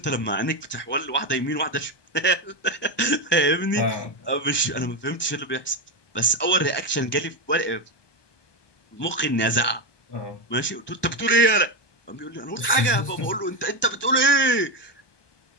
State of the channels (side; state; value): right; late; 1.2 ms